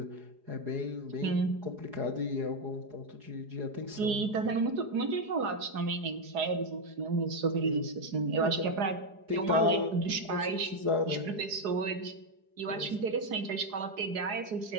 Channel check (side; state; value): left; late; 4.8 ms